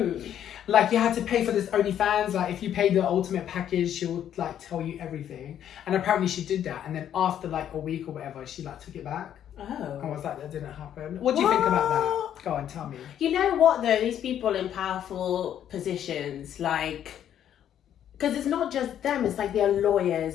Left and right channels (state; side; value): quieter; right; 10.2 dB